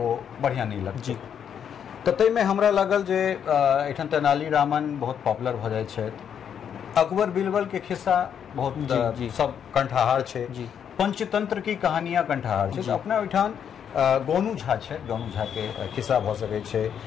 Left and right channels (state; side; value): quieter; right; 8.3 dB